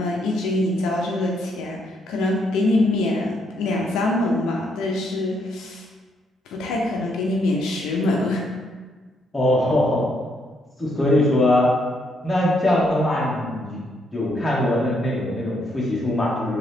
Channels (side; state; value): both; normal; correlation 0.74